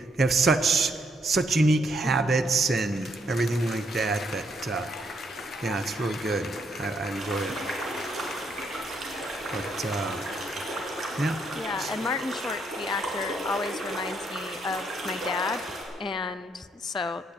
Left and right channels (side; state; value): both; normal; correlation 0.73